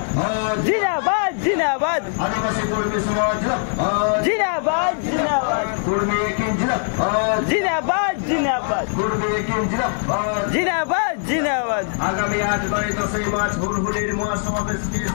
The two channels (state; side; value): silent; right; digital silence